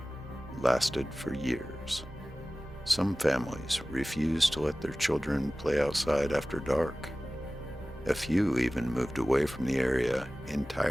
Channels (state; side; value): normal; both; correlation 0.97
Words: lasted for years. Some families refused to let their children play outside after dark. A few even moved away from the area